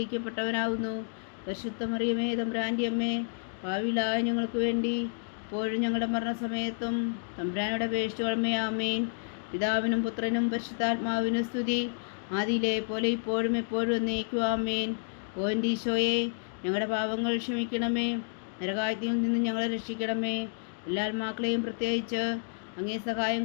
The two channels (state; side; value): silent; right; digital silence